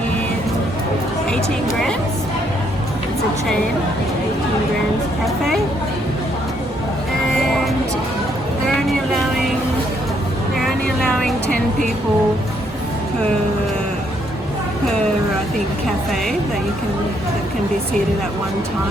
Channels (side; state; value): both; normal; correlation 0.71